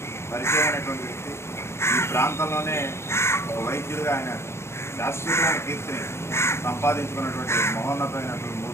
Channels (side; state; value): right; late; 0.13 ms